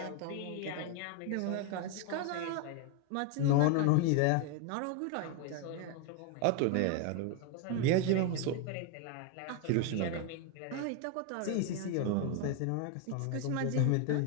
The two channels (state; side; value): different; both; correlation 0.01